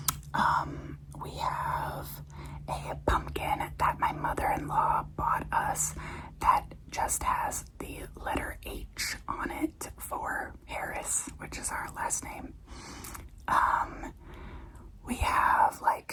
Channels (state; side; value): identical; both; correlation 1.00